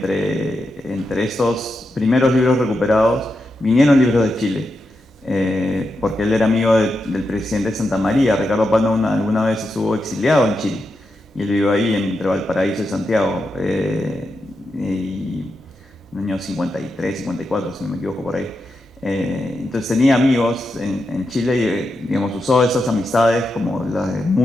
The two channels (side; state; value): both; normal; correlation 0.87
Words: estos primeros libros recuperados vinieron libros de Chile. Porque él era amigo del presidente de Santa María. Ricardo Palma alguna vez estuvo exiliado en Chile y él vivió ahí entre Valparaíso y Santiago, y en el año 53, 54, si no me equivoco, por ahí. Entonces tenía amigos en Chile y digamos, usó esas amistades como las de